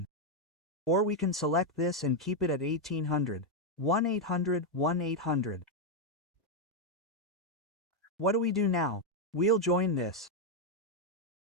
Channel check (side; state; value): both; normal; correlation 0.01